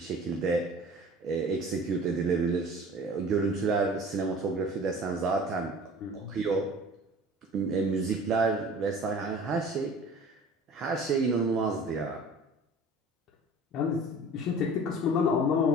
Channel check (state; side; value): normal; both; correlation 0.44